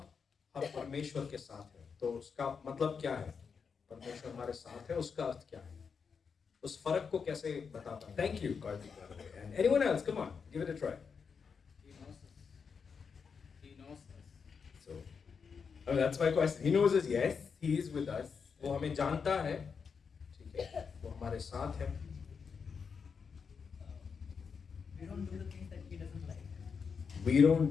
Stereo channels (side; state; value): right; quieter; 5.9 dB